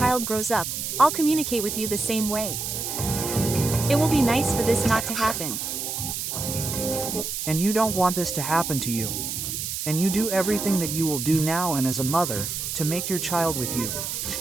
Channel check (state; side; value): noise; right; hiss, 4 dB below the sound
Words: grows up, I'll communicate with you the same way. It will be nice for this not to happen. And you don't want this to happen to you. And you do everything that you will do now and as a mother, to make your child with you.